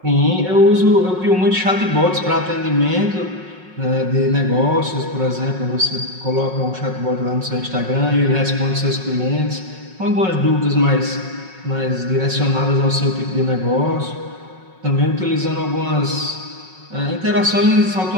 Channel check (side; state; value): left; late; 5.4 ms